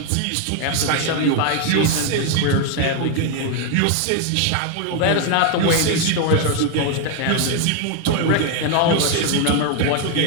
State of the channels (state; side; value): different; both; correlation 0.01